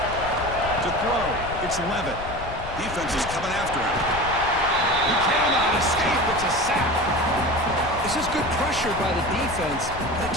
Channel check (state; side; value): noise; left; rumble, 11 dB below the sound